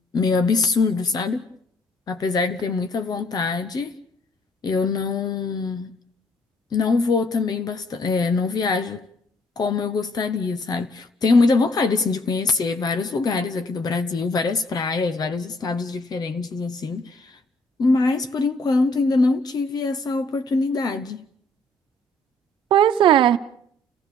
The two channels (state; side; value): normal; both; correlation 0.63